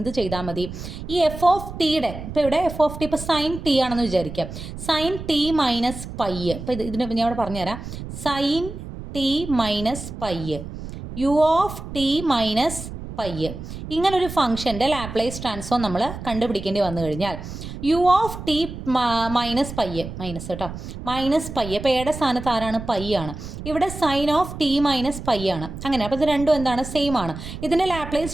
ചെയ്താൽ മതി? ഈ എഫ് ഓഫ് ടിയുടെ, ഇപ്പോൾ ഇവിടെ എഫ് ഓഫ് ടി ഇപ്പോൾ സൈൻ ടി ആണെന്ന് വിചാരിക്കുക. സൈൻ ടി മൈനസ് പൈ, ഇപ്പോൾ ഇതിന് ഞാൻ ഇവിടെ പറഞ്ഞുതരാം. Sine t minus pi, u of t minus pi, ഇങ്ങനൊരു ഫംഗ്ഷൻ്റെ ലാപ്ലേസ് ട്രാൻസ്ഫോം നമ്മൾ കണ്ടുപിടിക്കേണ്ടി വന്നു കഴിഞ്ഞാൽ u of t minus pi, minus കേട്ടോ, മൈനസ് പൈ, ഇപ്പോൾ എയുടെ സ്ഥാനത്ത് ആരാണ്? പൈ ആണ്. ഇവിടെ sine of t minus pi ആണ്. അങ്ങനെ അപ്പോൾ ഇത് രണ്ടും എന്താണ്? സെയിം ആണ്. ഇതിൻ്റെ ലാപ്ലേസ്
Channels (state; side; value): noise; right; rumble, 10 dB below the sound